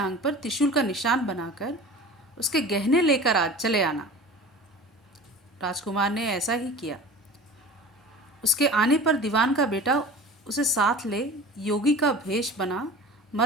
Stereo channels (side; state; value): both; normal; correlation 0.38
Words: पर त्रिशूल का निशान बनाकर उसके गहने लेकर आज चले आना। राजकुमार ने ऐसा ही किया। उसके आने पर दीवान का बेटा उसे साथ ले योगी का भेष बना